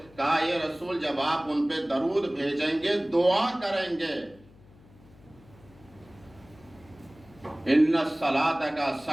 کہا یہ رسول جب آپ ان پہ درود بھیجیں گے، دعا کریں گے، ان الصلاۃ کا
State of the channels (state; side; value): noise; left; hum, 25 dB below the sound